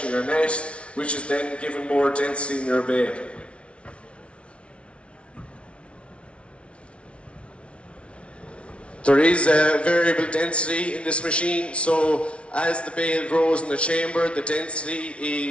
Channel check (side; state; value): right; late; 0.060 ms